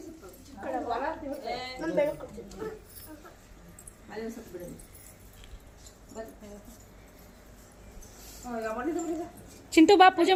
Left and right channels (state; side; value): identical; both; correlation 1.00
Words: ಸುತ್ತ ಅಲ್ಲಿಗೂ ಸುತ್ತ ಬಿಡಿ. ಚಿಂಟು ಬಾ ಪೂಜೆ